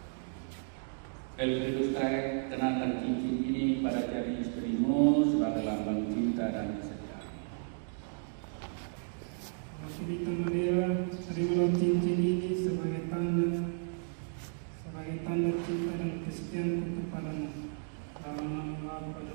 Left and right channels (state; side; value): silent; left; digital silence